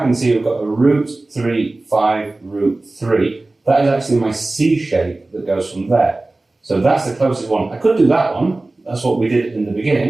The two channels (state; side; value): quieter; left; 3.0 dB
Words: see we've got a root 3, 5, root 3. That is actually my C shape that goes from there. So that's the closest one. I could do that one, that's what we did in the